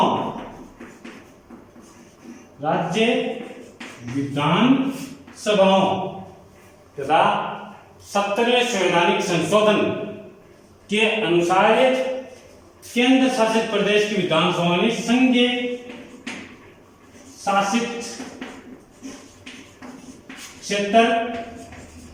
राज्य विधानसभाओं तथा 70वें संवैधानिक संशोधन के अनुसार केंद्र शासित प्रदेश की विधानसभा ने संघीय शासित क्षेत्र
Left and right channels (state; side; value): identical; both; correlation 1.00